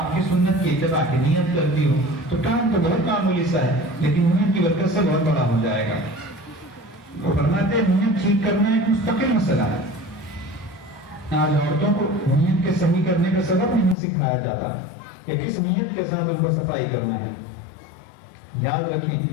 کی سنت کی اتباع کی نیت کرتی ہوں, تو کام تو بہت معمولی سا ہے لیکن نیت کی برکت سے بہت بڑا ہو جائے گا. وہ فرماتے ہیں نیت ٹھیک کرنا ایک مستقل مسئلہ ہے. آج عورتوں کو نیت کے صحیح کرنے کا سبب نہیں سکھایا جاتا کہ کس نیت کے ساتھ ان کو صفائی کرنا ہے. یاد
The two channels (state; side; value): drops out; right; at 14.0 s